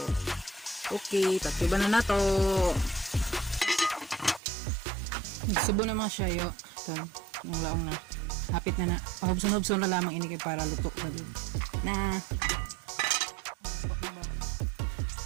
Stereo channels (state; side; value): drops out; left; at 4.4 s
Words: Okay, tatiban na nato. Nagsubo naman siya, yo. Ito, yung laong na. Hapit na na. Pahubson-hubson na lamang ini kay para luto na din. Na.